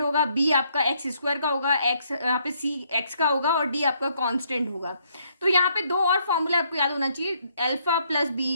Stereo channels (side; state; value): both; inverted; correlation -0.71